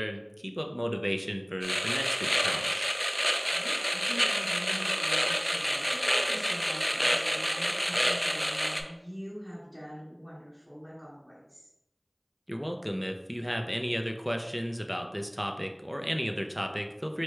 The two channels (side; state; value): both; identical; correlation 1.00